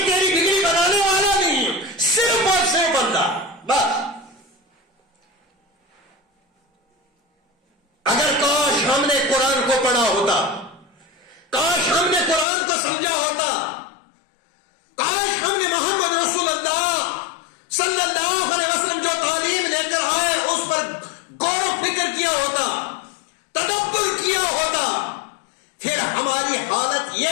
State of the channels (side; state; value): right; drops out; at 12.5 s